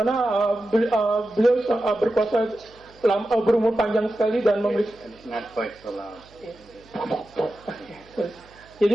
beliau berkuasa berumur panjang sekali dan memiliki. Not quite so loud.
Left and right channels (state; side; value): noise; right; hum, 27 dB below the sound